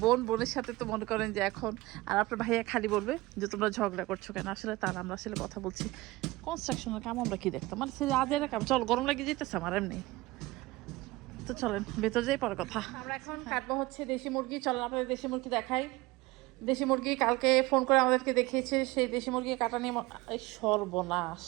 বোনের সাথে তো মনে করেন যে এখন, আর আপনার ভাইয়া খালি বলবে যে তোমরা ঝগড়া করছো কেন, আসলে তার আমরা আসলে কথা বলছি কনস্ট্রাকশনের কাম। আমরা কি দেখতাম মানে সে আজের কাম, চল গরম লাগিয়ে যেতেছে আমার এমনি। তো চলেন ভেতর যাই, পরে কথা। আমরা এখন কাটবো হচ্ছে দেশি মুরগি। চলেন আপনাদের দেশি মুরগি দেখাই। দেশি মুরগি কালকে ফোন করে আমাদেরকে দেখিয়েছে, সেই দেশি মুরগি কাটা নিয়ে এই সর্বনাশ।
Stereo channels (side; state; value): left; quieter; 20.4 dB